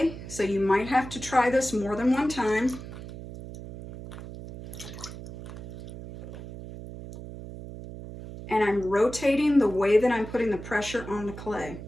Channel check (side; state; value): right; noise; hum, 12 dB below the sound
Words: so you might have to try this more than one time. And I'm rotating the way that I'm putting the pressure on the clay.